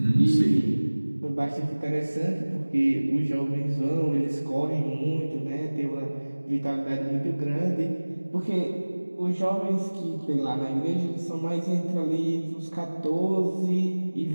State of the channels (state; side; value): inverted; both; correlation -1.00